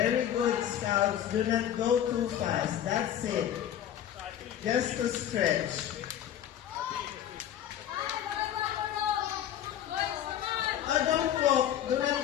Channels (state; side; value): quieter; right; 10.7 dB